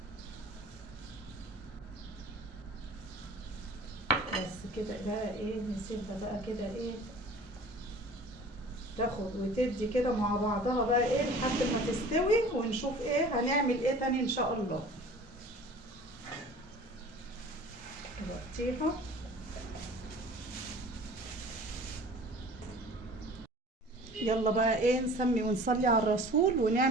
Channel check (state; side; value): normal; both; correlation 0.45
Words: بس كده بقى ايه، نسيبها بقى كده ايه تاخد وتدي كده مع بعضها بقى ايه لحد ما تستوي، ونشوف ايه هنعمل ايه تاني ان شاء الله. نغطيها، يلا بقى ايه نسمي ونصلي على الرسول،